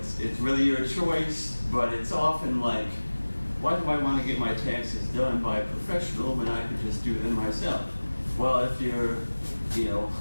really your choice, but it's often like, why do I want to get my taxes done by a professional when I can just do them myself? Well, if you're,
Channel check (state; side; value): inverted; both; correlation -1.00